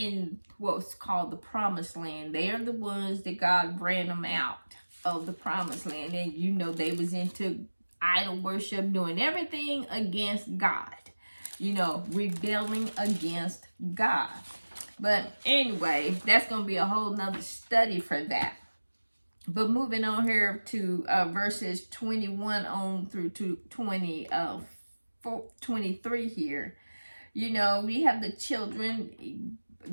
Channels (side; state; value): both; inverted; correlation -1.00